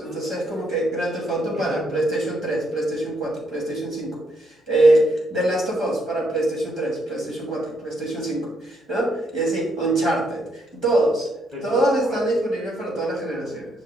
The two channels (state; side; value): normal; both; correlation 0.75